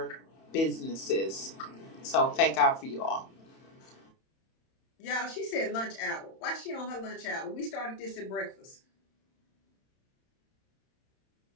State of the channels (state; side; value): late; right; 31 ms